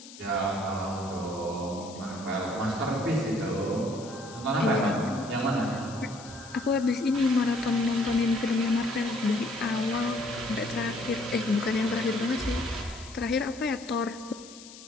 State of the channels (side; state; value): left; noise; hiss, 17 dB below the sound